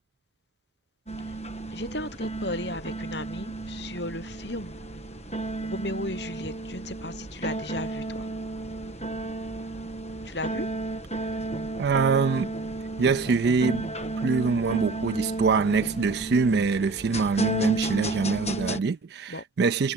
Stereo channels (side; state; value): left; quieter; 3.5 dB